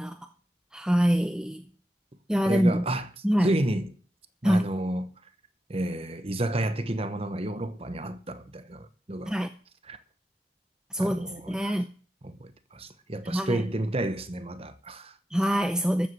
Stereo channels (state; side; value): normal; both; correlation 0.88